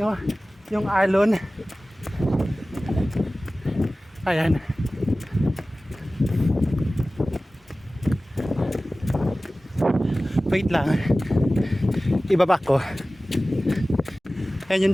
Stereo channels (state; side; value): normal; both; correlation 0.97